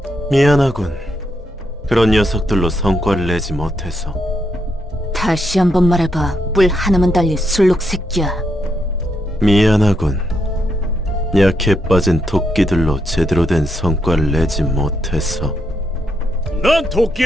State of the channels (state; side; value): normal; both; correlation 0.79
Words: 미안하군. 그런 녀석들로 성과를 내지 못해서. 다시 한번 말해봐, 뿔 하나만 달린 술록 새끼야. 미안하군. 약해 빠진 토끼들로 제대로 된 성과를 내지 못해서. 난